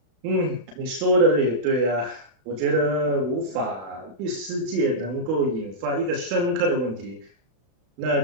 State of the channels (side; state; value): left; late; 32 ms